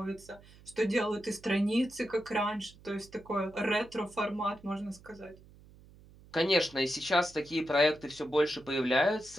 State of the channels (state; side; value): noise; right; hum, 23 dB below the sound